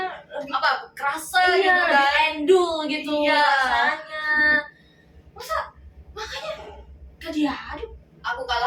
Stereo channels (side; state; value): both; identical; correlation 1.00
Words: lebih apa? Kerasa iya, gitu lebih kan. endul gitu Iya. rasanya. Masa makanya gak diaduk? Aku